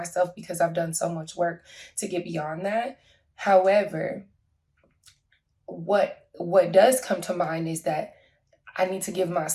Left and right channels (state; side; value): identical; both; correlation 1.00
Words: because I've done so much work to get beyond that. However, what does come to mind is that I need to give